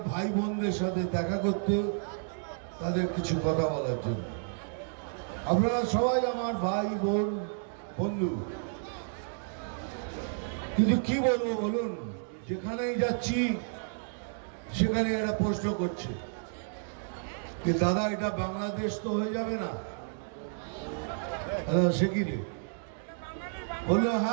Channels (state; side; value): silent; left; digital silence